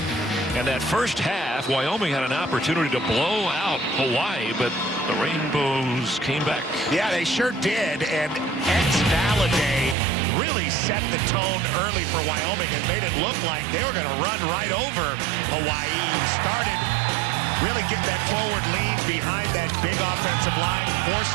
And that first half, Wyoming had an opportunity to blow out Hawaii, but the Rainbows came back. Yeah, they sure did. And Valaday really set the tone early for Wyoming and made it look like they were going to run right over Hawaii. Started really getting that forward lean behind that big offensive line,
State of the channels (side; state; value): left; drops out; at 10.0 s